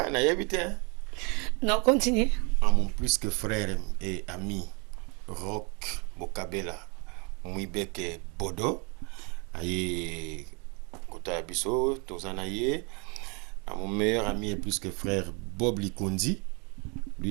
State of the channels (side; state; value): left; quieter; 32.6 dB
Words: na yebite. Non, continue. À mon plus que frère et ami Rock Bokabela Mouibeke Bodo aye kota biso tozanaye. À mon meilleur ami et plus que frère Bob Likondi.